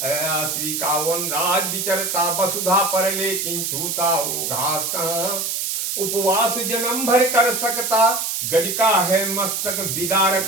अयासी का। वनराज विचरता वसुधा पर लेकिन छूता वो घास कहाँ, उपवास जन्म भर कर सकता गज का है मस्तक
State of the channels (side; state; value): right; noise; hiss, 1 dB below the sound